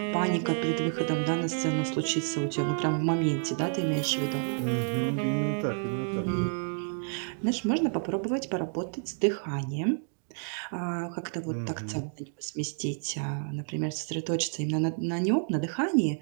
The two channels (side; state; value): left; silent; 58 dB below the other